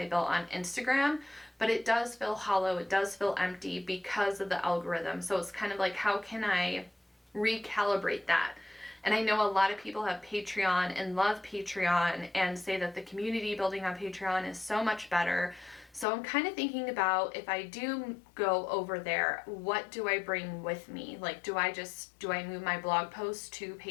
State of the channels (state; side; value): drops out; right; at 16.1 s